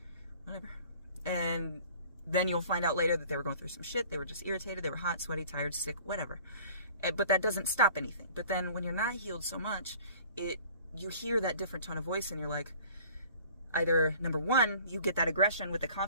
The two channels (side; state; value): both; inverted; correlation -0.48